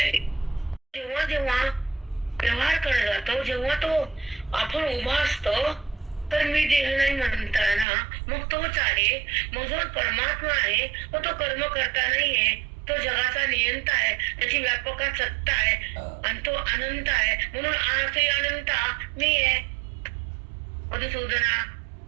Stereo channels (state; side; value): drops out; left; at 7.9 s